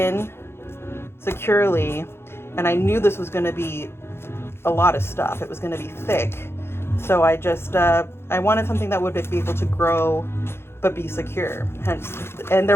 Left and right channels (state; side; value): late; right; 0.12 ms